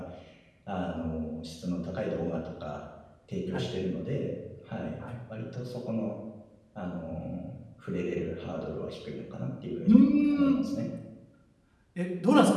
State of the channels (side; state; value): both; identical; correlation 1.00